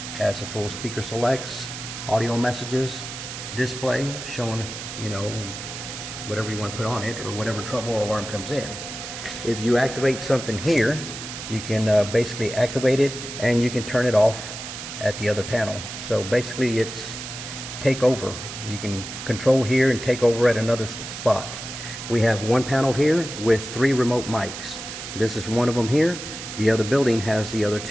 Has a full speaker selects, audio messages, display showing, you know, whatever you want to put on it or whatever trouble or alarm comes in. If you activate something here, you can basically activate it and you can turn it off at the other panel. So basically it's take over. You can control here and take over at another spot. We have one panel here with 3 remote mics. This is one of them here. The other building has the other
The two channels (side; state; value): right; noise; hiss, 9 dB below the sound